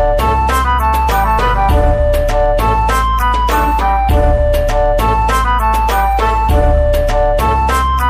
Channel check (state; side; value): identical; both; correlation 1.00